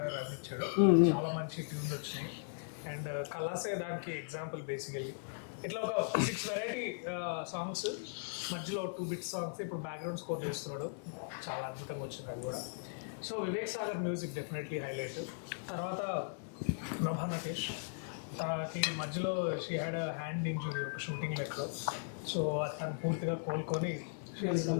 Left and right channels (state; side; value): silent; right; digital silence